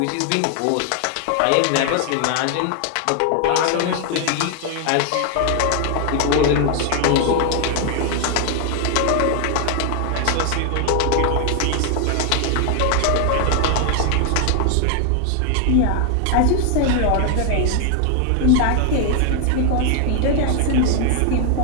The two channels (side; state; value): both; different; correlation 0.00